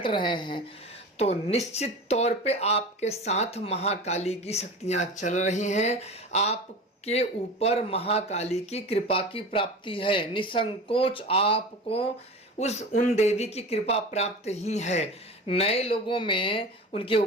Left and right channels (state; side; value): normal; both; correlation 0.33